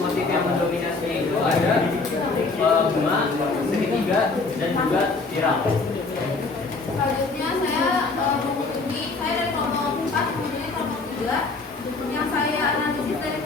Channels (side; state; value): right; quieter; 3.8 dB